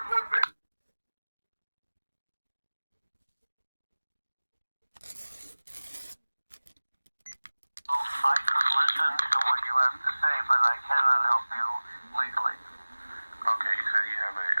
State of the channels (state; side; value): inverted; both; correlation -1.00